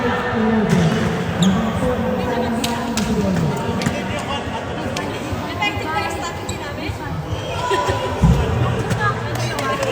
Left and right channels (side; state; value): both; identical; correlation 1.00